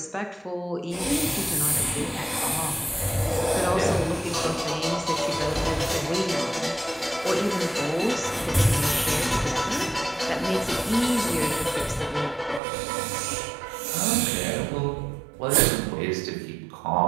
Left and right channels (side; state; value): left; drops out; at 12.6 s